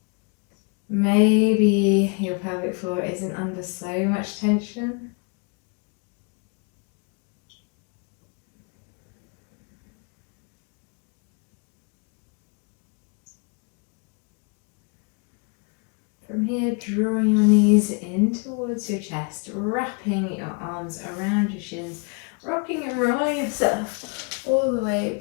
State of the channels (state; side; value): quieter; right; 35.0 dB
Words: Maybe your pelvic floor isn't under so much tension. From here, drawing your knees in towards your chest, wrapping your arms around your shins, rocking and rolling yourself all the way